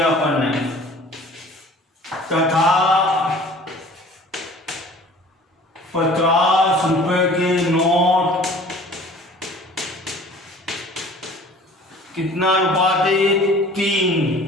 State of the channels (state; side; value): normal; both; correlation 0.48